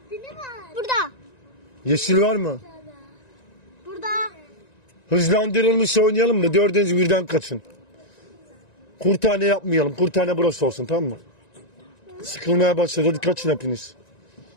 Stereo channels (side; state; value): right; late; 1.9 ms